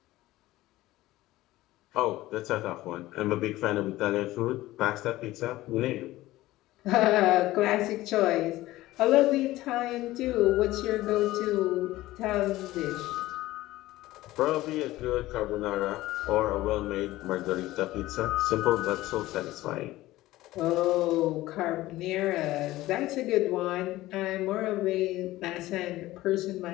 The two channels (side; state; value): right; quieter; 17.0 dB